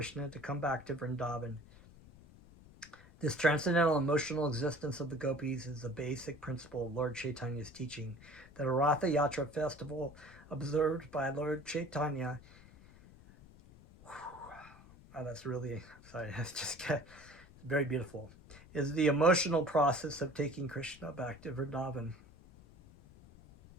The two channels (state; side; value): noise; left; rumble, 22 dB below the sound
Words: to come back to Vrindavan. This transcendental emotional existence of the gopis is the basic principle of Lord Chaitanya's teaching. The Ratha Yatra festival observed by Lord Chaitanya, that's really, sorry, that's just very beautiful, is the emotional process of taking Krishna back to Vrindavan.